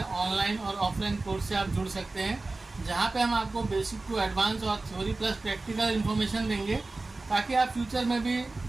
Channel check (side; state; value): left; quieter; 3.3 dB